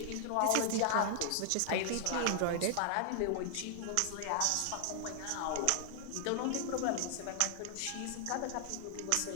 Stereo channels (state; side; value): different; both; correlation 0.00